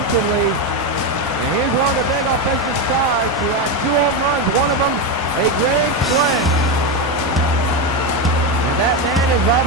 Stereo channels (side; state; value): both; normal; correlation 0.11